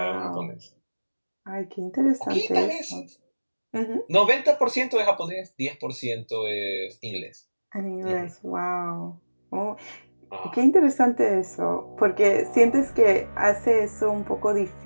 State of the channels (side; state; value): both; inverted; correlation -1.00